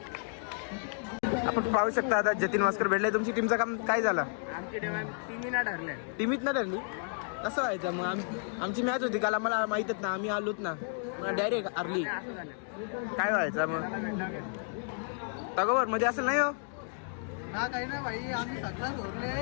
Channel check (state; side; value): silent; right; 57 dB below the other